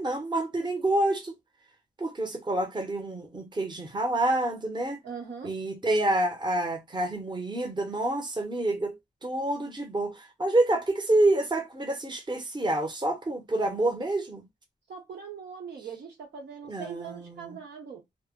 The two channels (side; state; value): both; normal; correlation 0.74